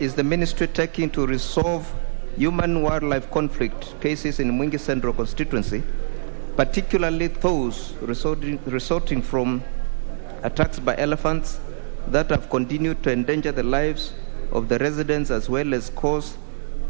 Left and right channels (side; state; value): left; silent; digital silence